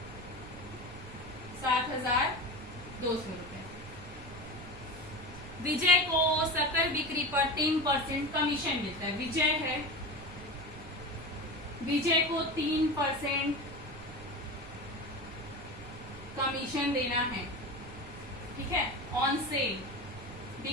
7,200 रुपए। विजय को सकल बिक्री पर 3% कमीशन मिलता है। विजय है, विजय को 3% कमीशन देना है। ठीक है, ऑन सेल,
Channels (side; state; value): right; noise; rumble, 15 dB below the sound